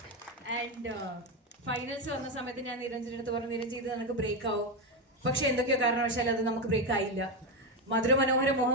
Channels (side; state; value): both; normal; correlation 0.10